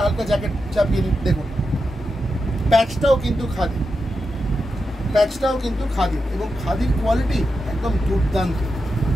হালকা জ্যাকেট চাপিয়ে নিন। দেখুন প্যাচটাও কিন্তু খাদি, প্যাচটাও কিন্তু খাদি, এবং খাদির কোয়ালিটি একদম দুর্দান্ত,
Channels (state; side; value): normal; both; correlation 0.88